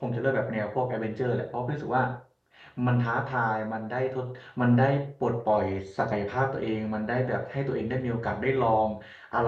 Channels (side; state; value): both; identical; correlation 1.00